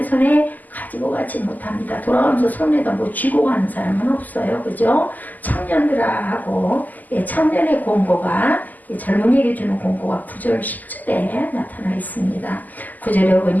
손에 가지고 가지 못합니다. 돌아가면서 손에다 뭐 쥐고 가는 사람은 없어요. 그죠? 청년들아 하고 청년의 공고가 젊은이에게 주는 공고가 9절 10절에 나타나 있습니다. 9절에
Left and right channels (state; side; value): late; right; 0.082 ms